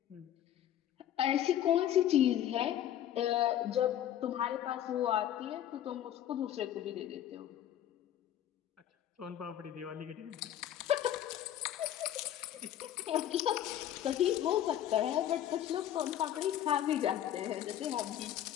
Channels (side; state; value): right; quieter; 11.2 dB